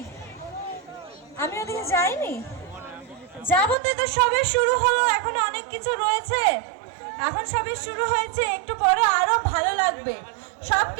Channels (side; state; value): left; drops out; at 3.8 s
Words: আমি ওদিকে যাইনি, যাবো তো। সবে শুরু হলো, এখন অনেক কিছু রয়েছে। এখন সবে শুরু হয়েছে, একটু পরে আরো ভালো লাগবে।